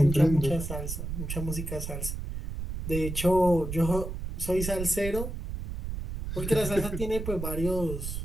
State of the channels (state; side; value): noise; right; rumble, 6 dB below the sound